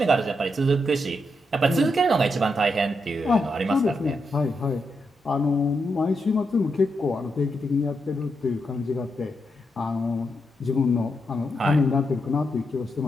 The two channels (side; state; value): both; normal; correlation 0.83